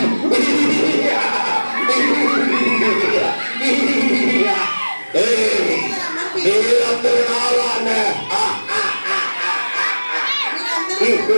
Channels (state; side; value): inverted; both; correlation -1.00